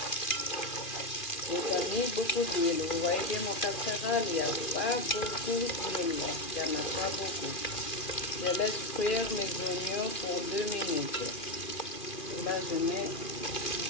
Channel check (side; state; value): right; late; 2.4 ms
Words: J'ai pas mis beaucoup d'huile. Vous voyez bien mon casserole, il n'y a pas beaucoup d'huile. Il n'y en a pas beaucoup. Je laisse cuire mes oignons pour 2 minutes. Et là, je mets